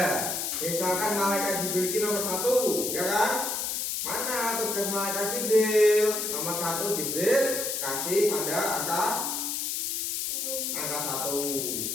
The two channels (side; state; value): left; noise; hiss, 1 dB below the sound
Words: Misalkan malaikat Jibril ini nomor 1, ya kan? Mana tugas malaikat Jibril? Nomor 1 Jibril, kasih tanda angka 1.